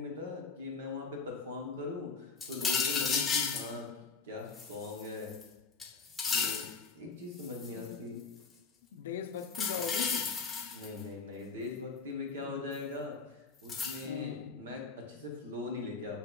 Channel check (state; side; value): quieter; right; 4.7 dB